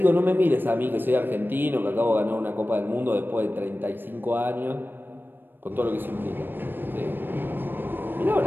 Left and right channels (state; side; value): late; left; 0.095 ms